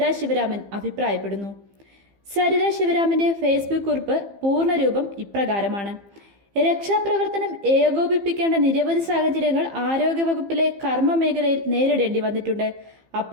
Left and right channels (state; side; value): late; left; 15 ms